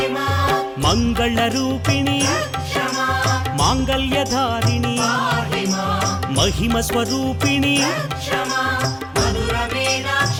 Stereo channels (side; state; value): both; identical; correlation 1.00